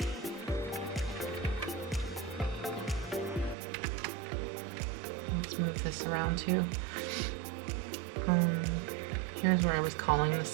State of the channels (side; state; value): left; drops out; at 3.6 s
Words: let's move this around too. Here's where I was calling the